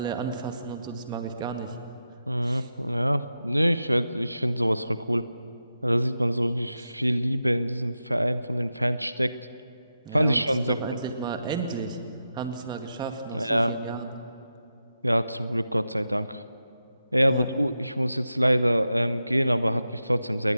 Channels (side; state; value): both; inverted; correlation -0.89